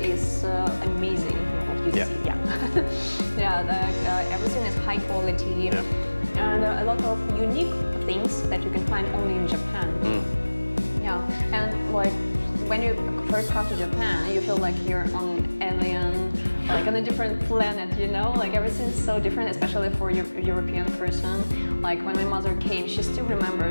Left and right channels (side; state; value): both; inverted; correlation -1.00